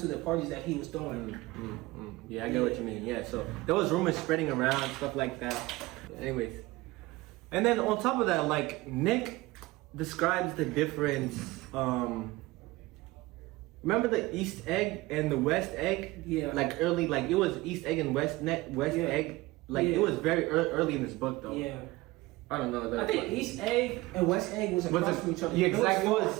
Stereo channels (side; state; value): left; quieter; 20.4 dB